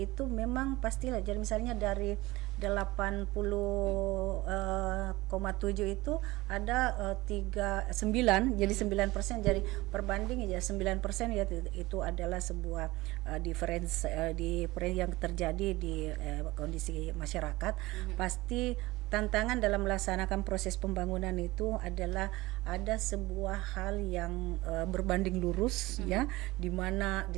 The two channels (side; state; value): left; quieter; 19.9 dB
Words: itu memang pastilah, jadi misalnya dari 80,7 itu ada 9, jadi 9%, jadi perbanding ya 9% ya, itu adalah sebuah difference yang terjadi di kondisi masyarakat. Pasti tantangan dalam melaksanakan proses pembangunan itu adalah ada sebuah hal yang berbanding lurus ya, di mana di